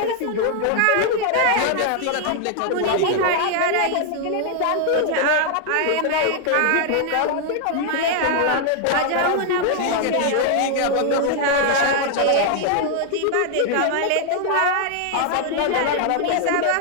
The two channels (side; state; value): both; different; correlation 0.00